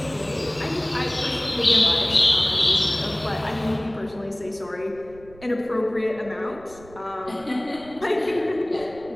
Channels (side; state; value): right; noise; rumble, 22 dB below the sound